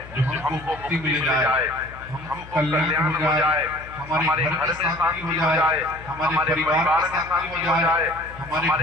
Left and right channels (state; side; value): noise; left; hum, 17 dB below the sound